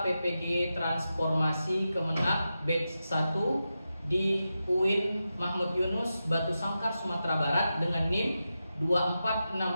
PPG Transformasi Kemenak Batch 1 di UIN Mahmud Yunus, Batu Sangkar, Sumatera Barat dengan NIM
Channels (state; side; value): inverted; both; correlation -0.90